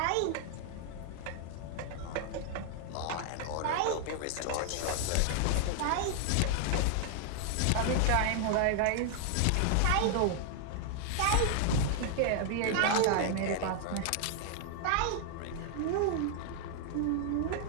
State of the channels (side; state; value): both; different; correlation 0.00